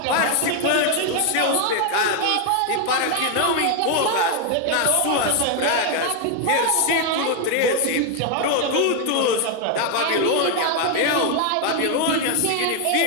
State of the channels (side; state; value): both; different; correlation 0.01